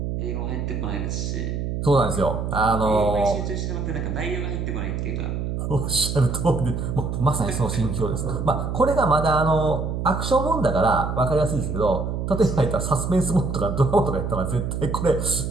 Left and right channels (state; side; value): noise; right; hum, 3 dB below the sound